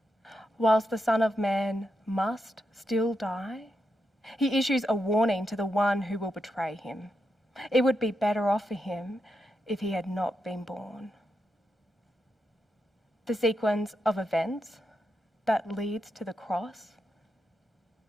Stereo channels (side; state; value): both; normal; correlation 0.85